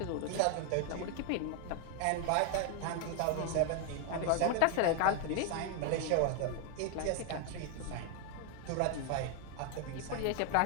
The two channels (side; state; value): both; different; correlation 0.01